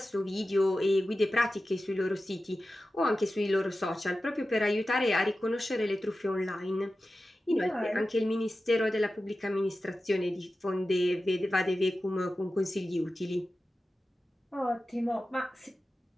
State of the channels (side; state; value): both; normal; correlation 0.94